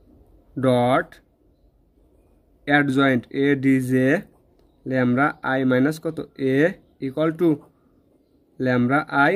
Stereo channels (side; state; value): both; identical; correlation 1.00